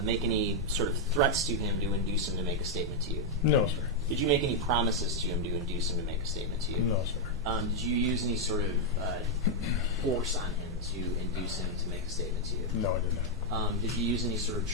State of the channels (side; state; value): both; normal; correlation -0.01